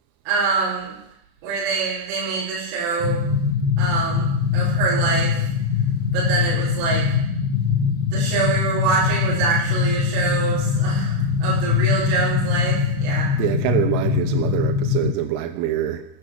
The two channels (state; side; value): late; left; 36 ms